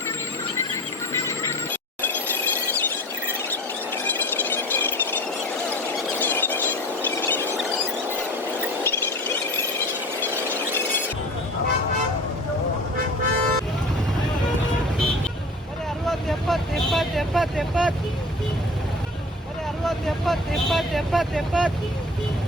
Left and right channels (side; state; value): both; normal; correlation 0.39